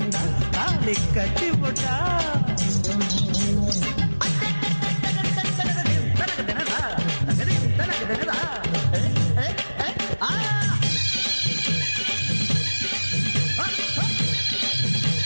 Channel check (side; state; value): both; inverted; correlation -1.00